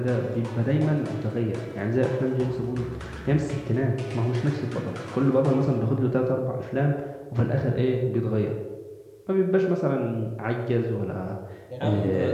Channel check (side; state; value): both; identical; correlation 1.00